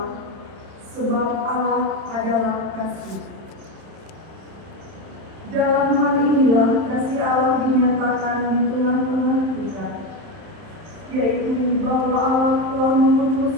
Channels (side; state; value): left; late; 31 ms